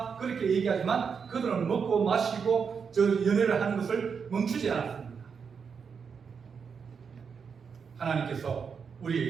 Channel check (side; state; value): left; quieter; 6.2 dB